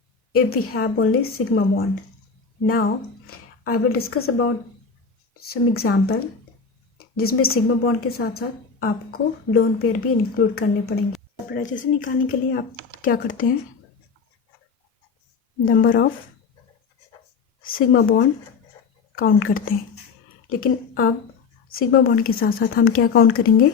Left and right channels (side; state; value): right; quieter; 5.3 dB